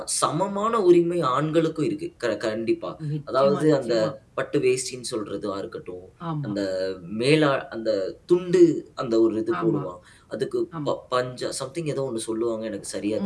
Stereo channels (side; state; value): both; identical; correlation 1.00